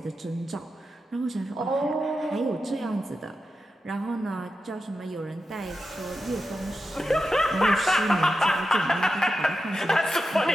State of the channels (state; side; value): normal; both; correlation 0.90